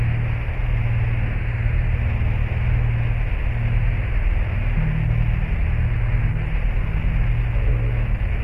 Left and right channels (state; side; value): identical; both; correlation 1.00